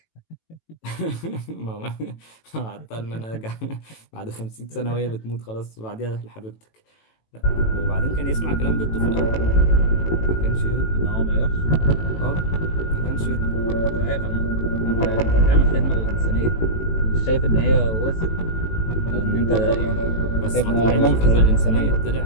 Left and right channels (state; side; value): late; right; 18 ms